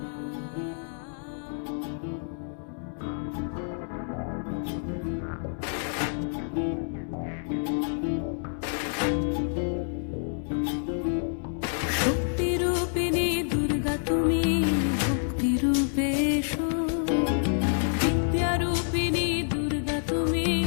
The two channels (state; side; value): silent; right; 59 dB below the other